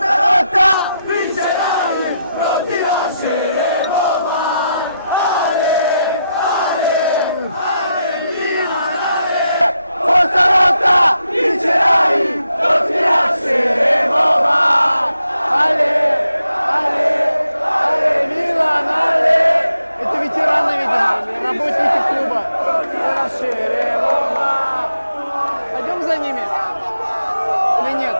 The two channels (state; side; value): inverted; both; correlation -0.83